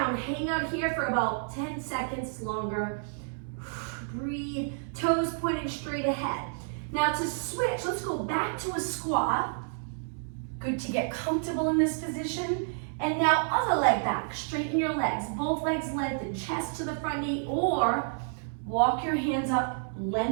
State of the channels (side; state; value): left; silent; 58 dB below the other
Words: hang out here for about 10 seconds longer. Breathe, toes pointing straight ahead. Now to switch, let's go back to a squat. Good to get comfortable in this position. And now other leg back, straighten your legs. Both legs lengthen, chest to the front knee, or walk your hands up,